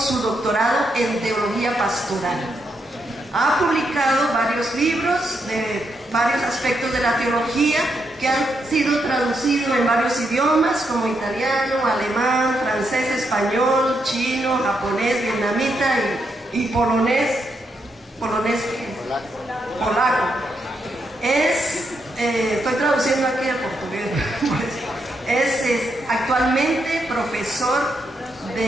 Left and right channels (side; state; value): both; normal; correlation 0.80